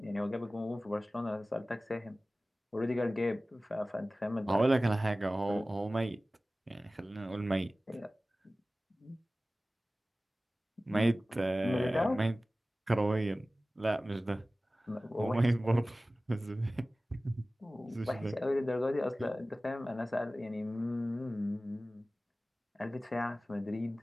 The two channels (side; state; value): both; normal; correlation 0.97